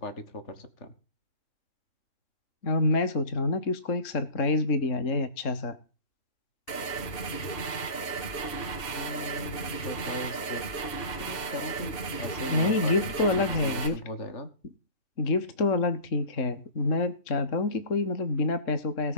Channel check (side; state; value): right; late; 2.7 ms